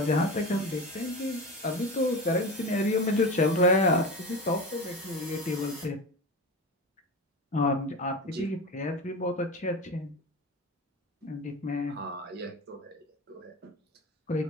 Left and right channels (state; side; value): normal; both; correlation 0.27